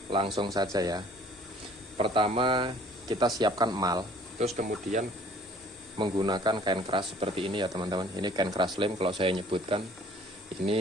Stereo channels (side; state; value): both; normal; correlation 0.54